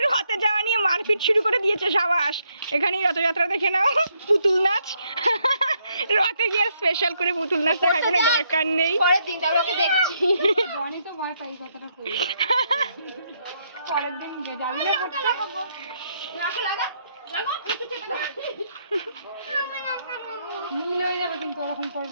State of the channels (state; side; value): inverted; both; correlation -0.74